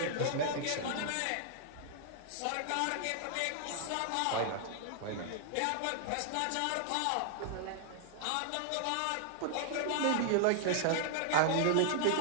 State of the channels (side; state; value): both; different; correlation -0.01